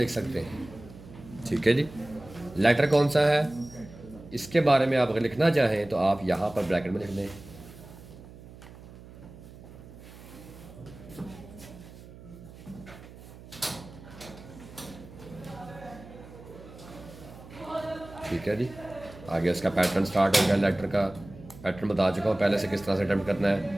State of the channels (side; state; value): right; noise; hum, 18 dB below the sound